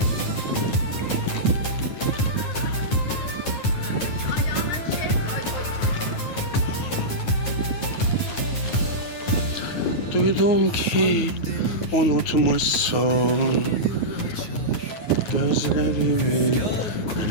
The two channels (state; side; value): late; right; 9.5 ms